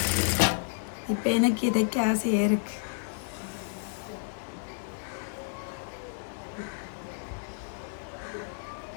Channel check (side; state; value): right; silent; digital silence